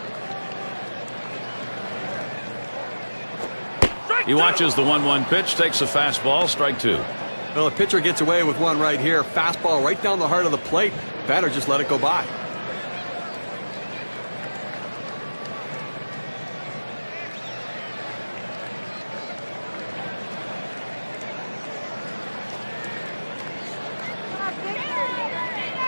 He watches the 1-1 pitch, takes a fastball, strike 2. Well, the pitcher gets away with one right here. Fastball right down the heart of the plate. Batter just let it go by.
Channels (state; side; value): inverted; both; correlation -1.00